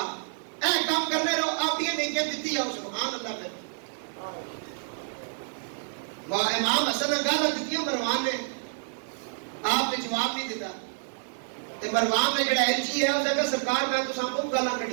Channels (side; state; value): left; silent; digital silence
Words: اے کام کرنے رہو, آپ یہ نیکیاں دیتی جاؤ. سبحان اللہ. پھر امام حسن نے گالا دیتی مروان نے, آپ نے جواب نہیں دیتا. مروان نے جڑا ایلچی ہے اس نے سرکار میں تو سب کو گالا